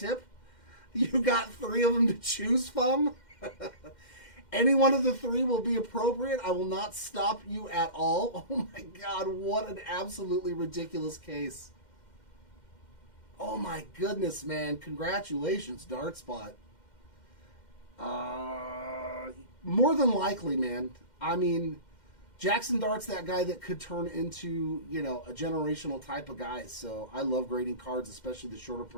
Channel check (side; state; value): right; late; 2.1 ms